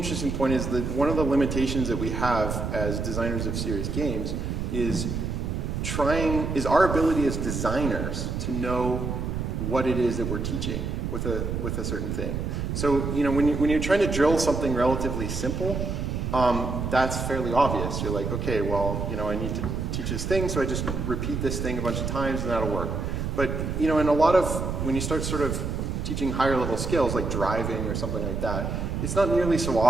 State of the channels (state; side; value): noise; right; rumble, 2 dB below the sound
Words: point is that one of the limitations that we have as designers of serious games is our ability as designers to know what it is that we're teaching with a certain thing. So when you're trying to drill something relatively simple, that's fairly obvious. You're like, okay, well, I need to teach this thing, so I just repeat this thing a bunch of times and that'll work. But in a lot of, when you start sort of teaching higher level skills like driving or something like that, it's not nearly so